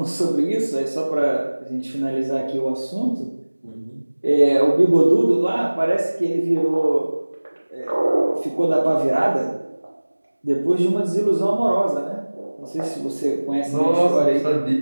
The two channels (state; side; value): inverted; both; correlation -1.00